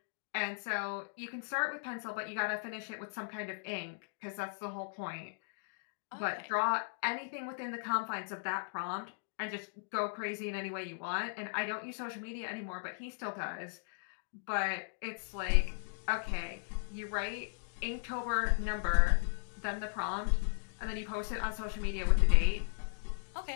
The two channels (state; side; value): silent; right; digital silence